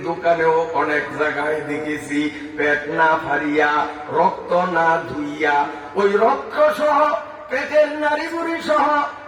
দোকানেও অনেক জায়গায় দেখেছি পেট না পারিয়া, রক্ত না ধুইয়া, ওই রক্ত সহ পেটের নারী বুড়ি সহ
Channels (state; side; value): identical; both; correlation 1.00